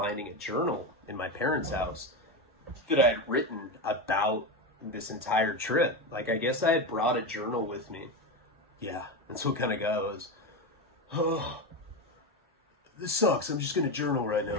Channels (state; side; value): normal; both; correlation 0.16